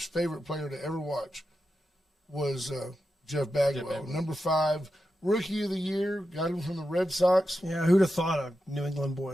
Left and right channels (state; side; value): normal; both; correlation 0.89